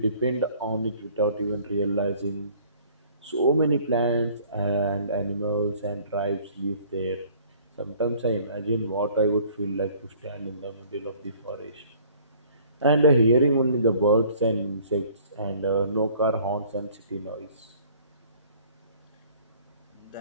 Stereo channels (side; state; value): both; inverted; correlation -0.55